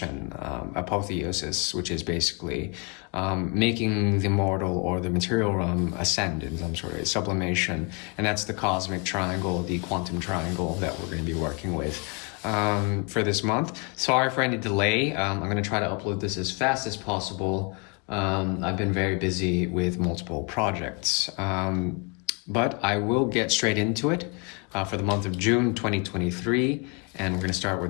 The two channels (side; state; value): right; quieter; 33.7 dB